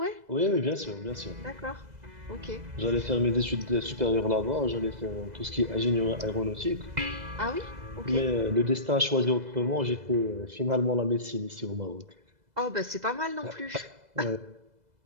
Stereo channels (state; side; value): late; left; 2.0 ms